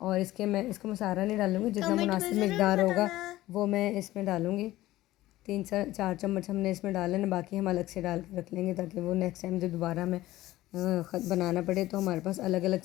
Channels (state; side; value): quieter; right; 16.2 dB